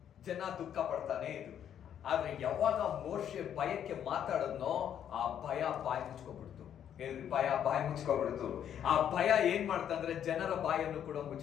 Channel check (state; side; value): quieter; right; 9.5 dB